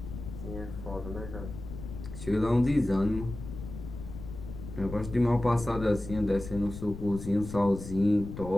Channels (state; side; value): noise; left; rumble, 10 dB below the sound